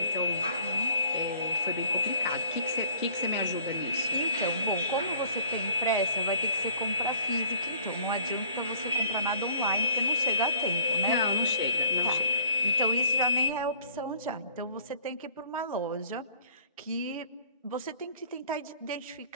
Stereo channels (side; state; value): both; inverted; correlation -0.54